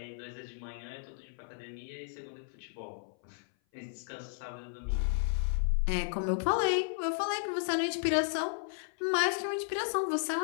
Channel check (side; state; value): right; silent; 55 dB below the other